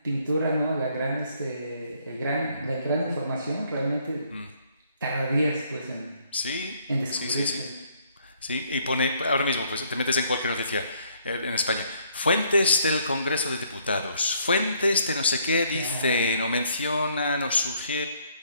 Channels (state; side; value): inverted; both; correlation -0.66